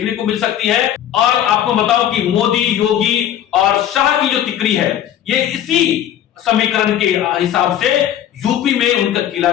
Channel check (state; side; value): quieter; right; 10.8 dB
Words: को मिल सकती है। और आपको बताओ कि मोदी, योगी और शाह की जो तिकड़ी है, ये इसी समीकरण के हिसाब से यूपी में उनका किला